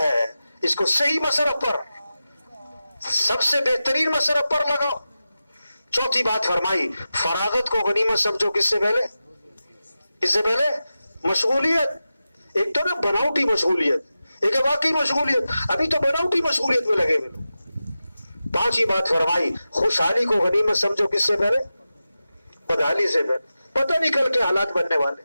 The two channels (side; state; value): both; inverted; correlation -0.93